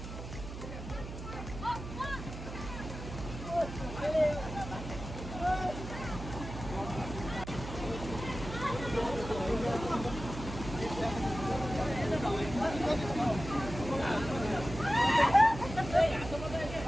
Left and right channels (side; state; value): right; noise; hum, 9 dB below the sound